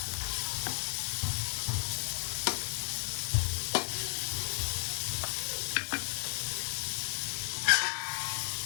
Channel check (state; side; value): silent; right; digital silence